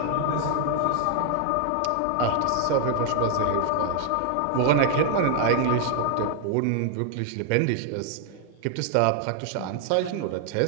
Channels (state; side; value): different; both; correlation 0.00